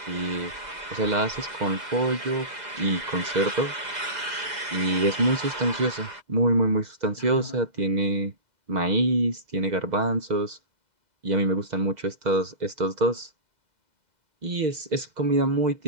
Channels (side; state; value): left; late; 2.0 ms